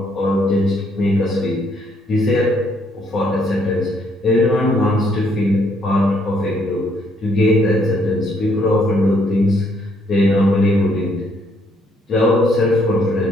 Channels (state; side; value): normal; both; correlation 0.69